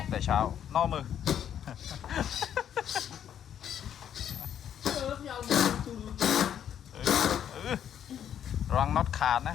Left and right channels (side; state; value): right; quieter; 9.5 dB